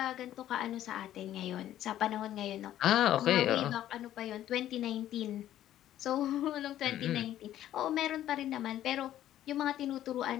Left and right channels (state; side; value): quieter; right; 12.4 dB